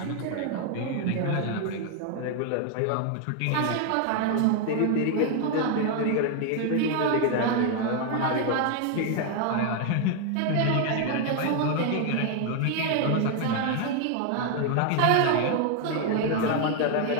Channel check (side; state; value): both; different; correlation 0.00